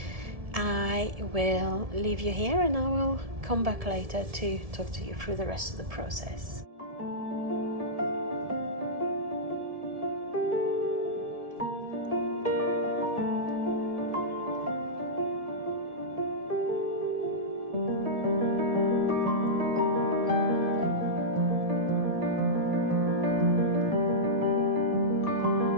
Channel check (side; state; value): left; late; 1.7 ms